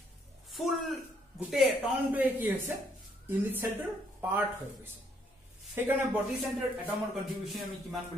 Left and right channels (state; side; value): normal; both; correlation 0.70